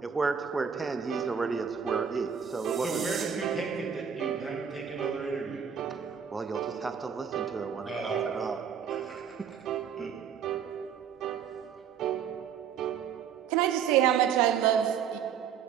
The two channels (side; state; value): left; quieter; 7.6 dB